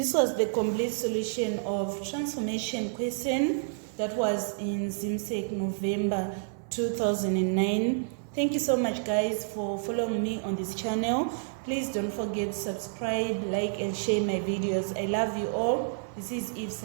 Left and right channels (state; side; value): silent; left; 58 dB below the other